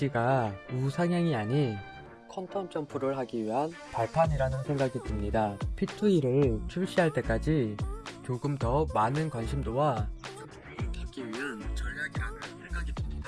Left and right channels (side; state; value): both; identical; correlation 1.00